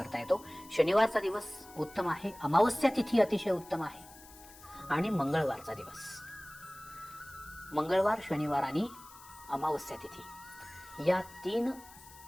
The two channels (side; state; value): left; noise; hiss, 20 dB below the sound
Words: येतो. शनिवारचा दिवस उत्तम आहे. अमावस्या तिथी अतिशय उत्तम आहे. आणि मंगळवारचा दिवस, मंगळवार, शनिवार आणि अमावस्या तिथी या 3